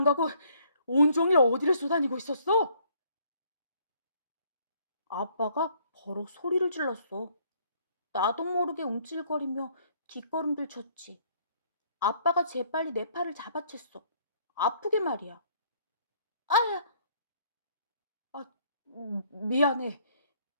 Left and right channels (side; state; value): both; inverted; correlation -0.63